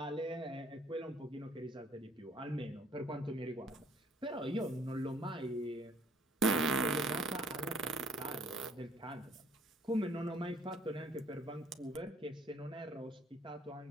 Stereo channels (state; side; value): normal; both; correlation 0.59